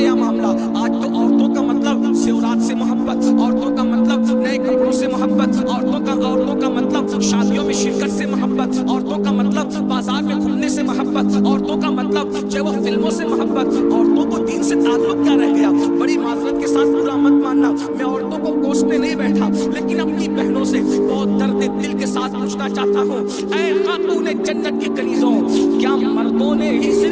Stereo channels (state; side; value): identical; both; correlation 1.00